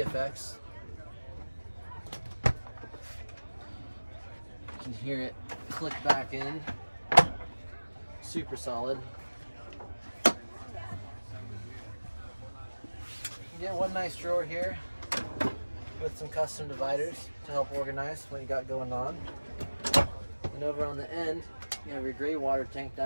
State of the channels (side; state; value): both; inverted; correlation -1.00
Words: You can hear it click back in. Super solid. You get one nice drawer here with some custom dividers to help organize what you got going on. And over on the end, you have your gray water tank